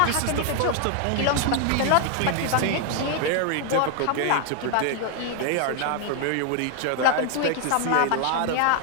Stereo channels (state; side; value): different; both; correlation 0.00